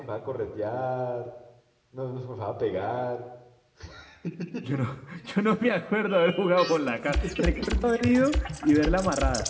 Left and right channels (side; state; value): both; identical; correlation 1.00